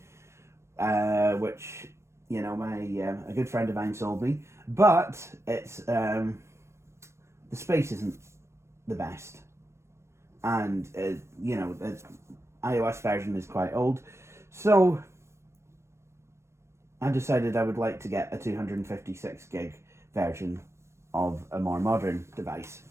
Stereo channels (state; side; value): late; left; 0.13 ms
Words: which, you know, a good friend of mine sold me. But it's the space isn't the best, and you know, the iOS version is quite old, so I decided I would like to get a 256 gig version of a more modern device.